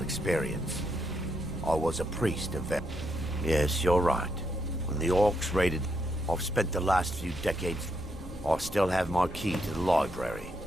experience. I was a priest of Yes, you're right. When the orcs raided, I've spent the last few decades... I still have my key to the library.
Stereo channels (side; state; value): both; normal; correlation 0.79